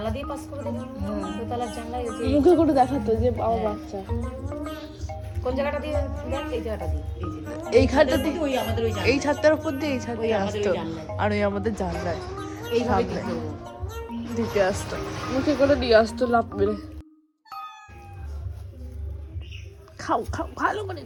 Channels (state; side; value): identical; both; correlation 1.00